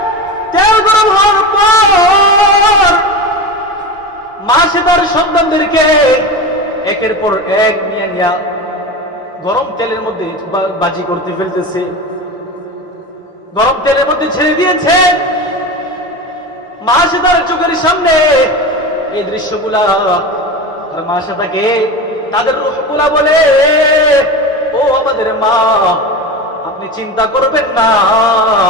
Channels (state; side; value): normal; both; correlation 0.25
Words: তেল গরম হওয়ার পর মাসে তার সন্তানদেরকে একের পর এক নিয়ে নিয়ে গরম তেলের মধ্যে বাজি করতে ফেলতেছে, গরম তেলের মধ্যে ছেড়ে দিয়েছে। মাসে তার চোখের সামনে এই দৃশ্যগুলা, আর মাসে তাকে তাদের রূহগুলা বলে, ও আমাদের মা, আপনি চিন্তা করবেন না,